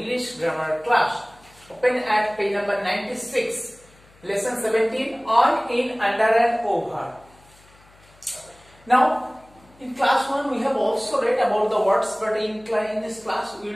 grammar class. Open at page number 96, lesson 17 on, in, under and over. Now, in class 1 we have also read about the words, but in this class we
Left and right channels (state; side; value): noise; left; hum, 28 dB below the sound